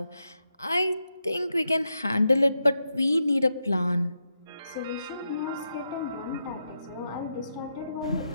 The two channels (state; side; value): inverted; both; correlation -0.85